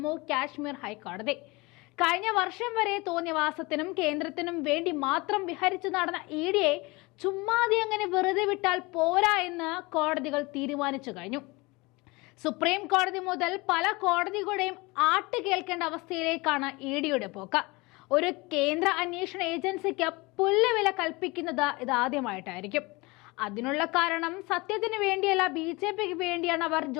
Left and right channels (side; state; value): right; quieter; 24.4 dB